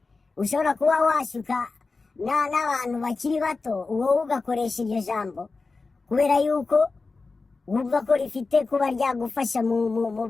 ushobora kuba washuka n'abantu bakiri bato, wowe ugakoresha iryo jambo kubera yuko wumva ko rifite kuba ryagufasha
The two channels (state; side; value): quieter; right; 4.0 dB